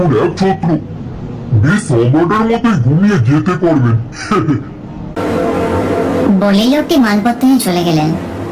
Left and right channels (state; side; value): identical; both; correlation 1.00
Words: এক ছাত্র, বেশ সম্রাটের মতোই ঘুমিয়ে যেতে পারবেন। বলেই লোকটি মালপত্র নিয়ে চলে গেলেন।